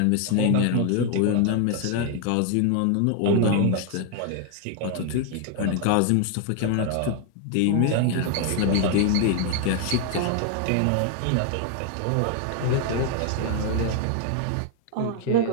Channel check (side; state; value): both; different; correlation 0.00